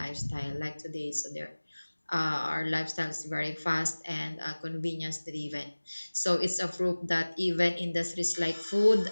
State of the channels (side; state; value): both; inverted; correlation -1.00